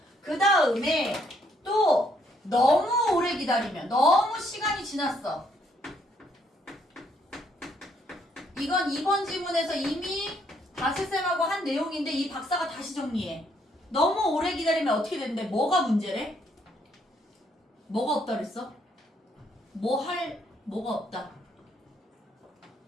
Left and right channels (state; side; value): normal; both; correlation 0.70